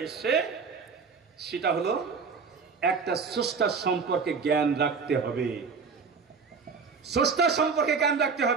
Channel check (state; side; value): quieter; left; 5.3 dB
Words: এসছে সেটা হলো একটা স্রষ্টার সম্পর্কে জ্ঞান রাখতে হবে। স্রষ্টার সম্পর্কে জ্ঞান রাখতে